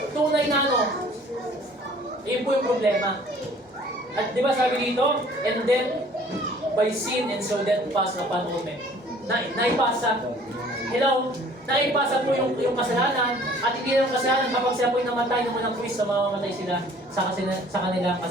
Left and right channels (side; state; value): both; normal; correlation 0.53